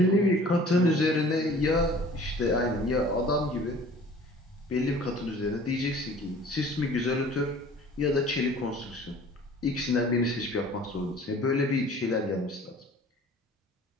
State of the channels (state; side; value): normal; both; correlation 0.48